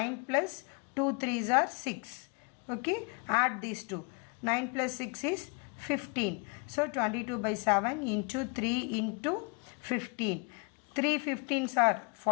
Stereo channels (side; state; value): right; quieter; 34.4 dB